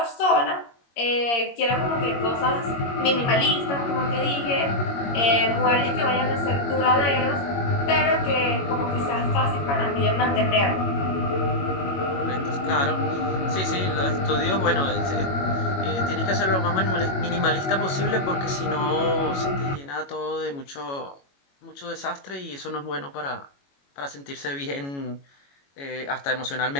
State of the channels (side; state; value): right; late; 21 ms